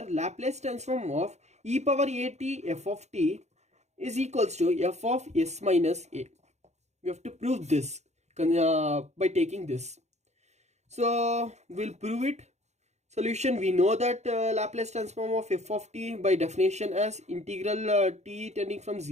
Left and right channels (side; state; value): left; late; 0.33 ms